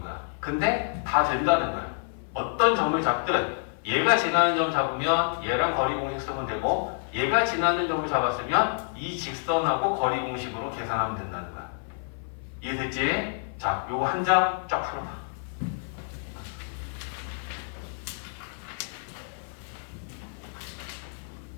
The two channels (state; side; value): silent; right; 56 dB below the other